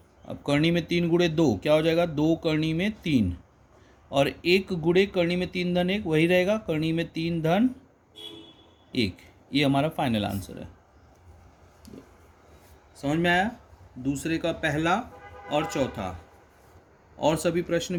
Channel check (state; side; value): identical; both; correlation 1.00